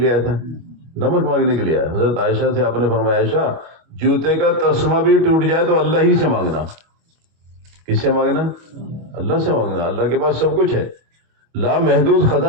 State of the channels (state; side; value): late; left; 25 ms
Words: آیا تھا؟ نمک مانگنے کے لیے آیا۔ حضرت عائشہ سے آپ نے فرمایا عائشہ جوتے کا تسمہ بھی ٹوٹ جائے تو اللہ ہی سے مانگنا۔ کس سے مانگنا؟ اللہ سے مانگنا۔ اللہ کے پاس سب کچھ ہے، لامحدود